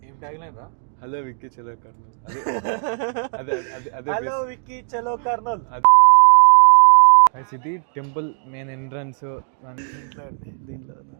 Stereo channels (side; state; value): left; silent; digital silence